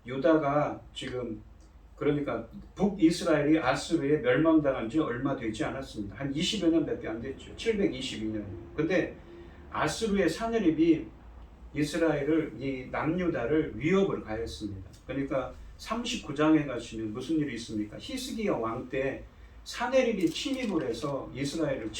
유다가 지금, 그러니까 북이스라엘이 아수르에 멸망당한 지 얼마 되지 않았습니다. 한 20여 년밖에 안 됐죠. 722년이에요. 근데 아수르의 사내립이 이스라엘을, 이 남유다를 위협을 가했습니다. 그러니까 39장에 가시면 무슨 일이 있습니까? 히스기야 왕 때 사내립이 침입을 해서 이스라엘을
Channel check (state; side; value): identical; both; correlation 1.00